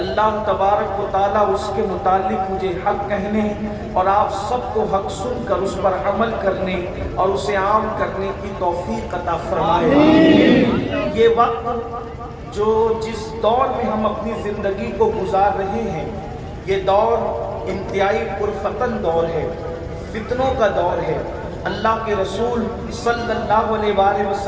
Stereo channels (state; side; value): identical; both; correlation 1.00